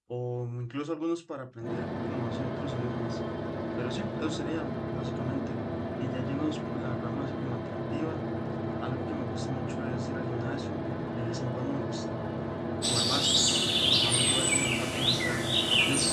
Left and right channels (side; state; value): both; identical; correlation 1.00